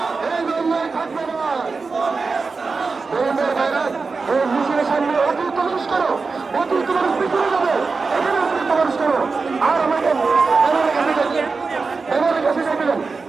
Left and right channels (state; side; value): quieter; left; 4.4 dB